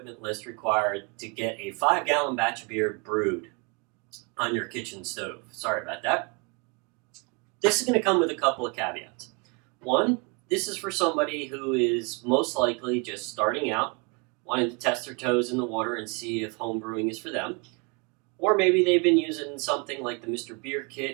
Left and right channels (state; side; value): quieter; left; 31.7 dB